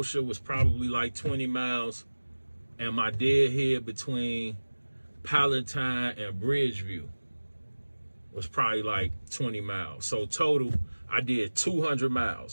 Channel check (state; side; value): inverted; both; correlation -1.00